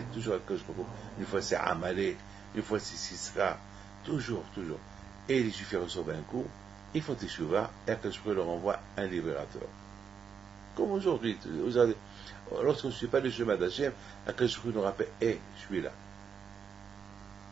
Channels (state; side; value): quieter; left; 6.7 dB